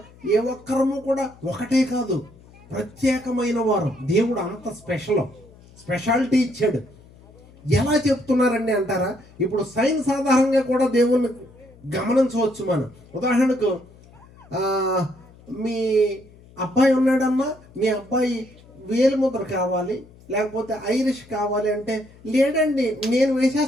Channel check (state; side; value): noise; left; hum, 24 dB below the sound